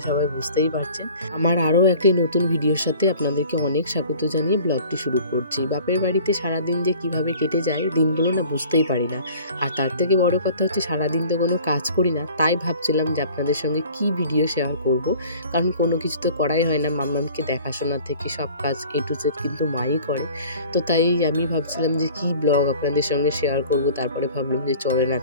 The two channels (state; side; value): inverted; both; correlation -0.47